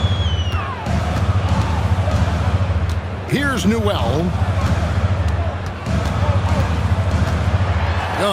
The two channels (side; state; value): both; identical; correlation 1.00